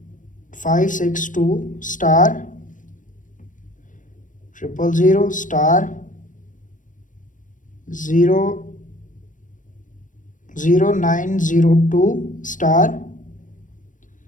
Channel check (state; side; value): late; right; 0.38 ms